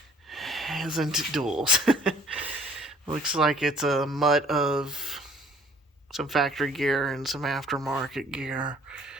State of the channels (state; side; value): normal; both; correlation 0.55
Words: isn't duals. Looks like it's a mutt of some factory gear and some aftermarket gear.